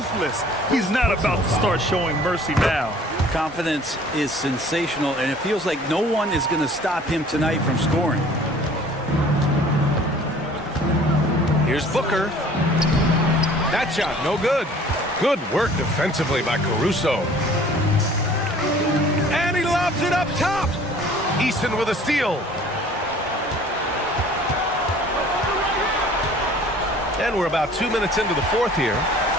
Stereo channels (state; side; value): normal; both; correlation 0.51